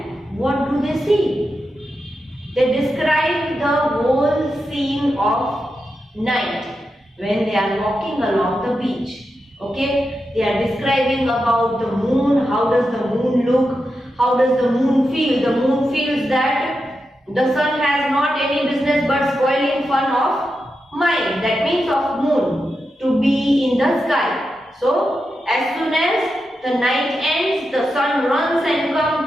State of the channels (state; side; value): normal; both; correlation 0.88